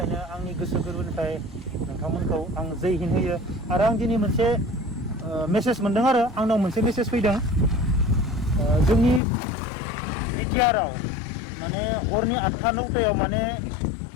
आंनि गोसो गोरबोनिफ्राय नोंथांमोनखौ आं जै हिन्द होयो आरो आं दिनै मोनसे मेसेज मोनदों आरो आंनाव मोनसे मेसेज फैदों जोंनि बिटिआरआव माने हरनि 8टा 9टायाव माने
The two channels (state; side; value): drops out; right; at 9.2 s